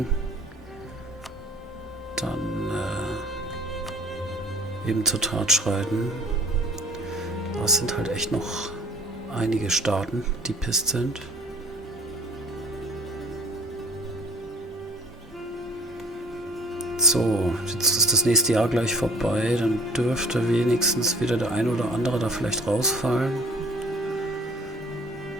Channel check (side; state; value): both; normal; correlation 0.49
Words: dann eben zur Tat schreiten. Aber es sind halt echt noch einige Staaten, die pisst sind. So, jetzt ist das nächste Jahr gleich vorbei, dann dürfte wenigstens wieder der eine oder andere da vielleicht rausfallen.